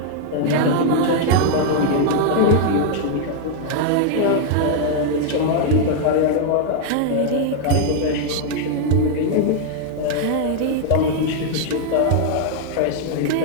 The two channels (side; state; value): both; different; correlation 0.00